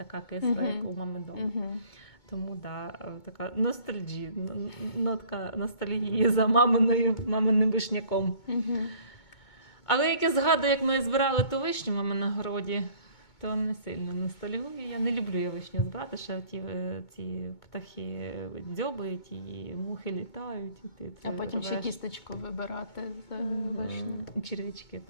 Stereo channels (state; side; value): late; right; 2.2 ms